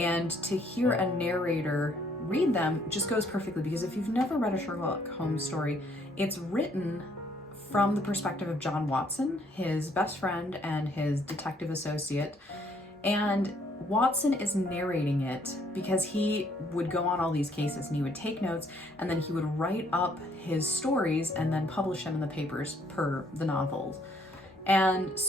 to hear a narrator read them just goes perfectly, because if you've never read a Sherlock Holmes story, it's written from the perspective of John Watson, his best friend and his detective associate. And Watson is narrating it because he would go on all these cases and he would take notes, and then he would write up his stories and then publish them in the papers per the novels. And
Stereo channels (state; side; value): normal; both; correlation 0.66